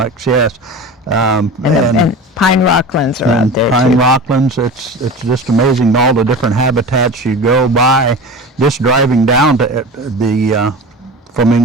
yes. And pine rocklands are out there pine too. rocklands, it's just amazing all the different habitats you go by just driving down to the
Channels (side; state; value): both; normal; correlation 0.32